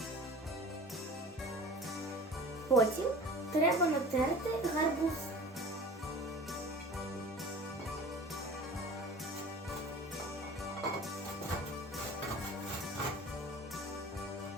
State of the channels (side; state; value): both; normal; correlation 0.40